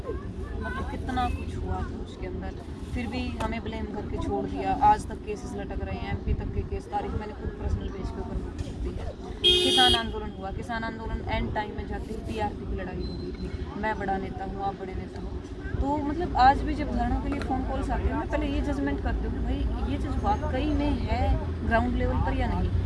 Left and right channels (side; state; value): both; identical; correlation 1.00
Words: हूँ। मतलब कितना कुछ हुआ था उसके अंदर, फिर भी हमें ब्लेम करके छोड़ दिया। आज तक केसेस लटक रहे हैं, एमपी तक के केस, तारीख मैंने खुद पर्सनल बेस के ऊपर दी है। किसान आंदोलन हुआ, किसान आंदोलन एंड टाइम में जाती हुई टीआरपी की लड़ाई हो गई थी। मैं बड़ा नेता हूँ, आप बड़े नेता हो, तो मतलब आज भी जब धरनों के लिए फ़ोन कॉल्स आते हैं, मैं पहले ये जजमेंट करती हूँ कि भाई ये चीज़ वाकई में है ग्राउंड लेवल पर या नहीं।